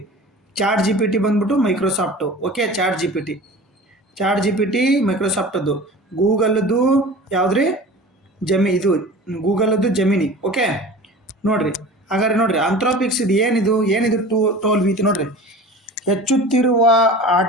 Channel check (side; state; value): both; normal; correlation 0.38